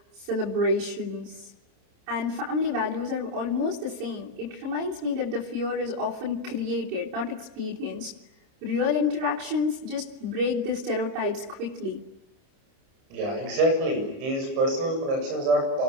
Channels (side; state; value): left; late; 29 ms